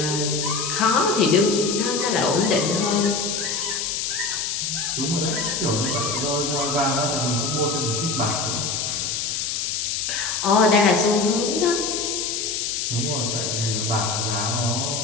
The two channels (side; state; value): left; noise; hiss, 1 dB below the sound